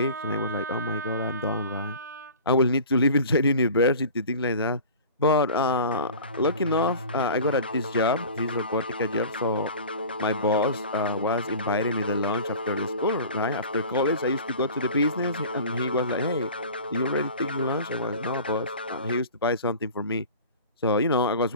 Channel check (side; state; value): both; inverted; correlation -0.40